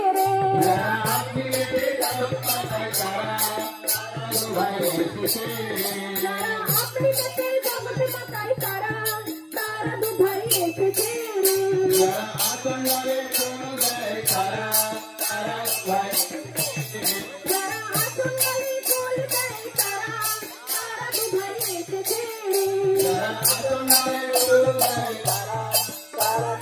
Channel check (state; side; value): identical; both; correlation 1.00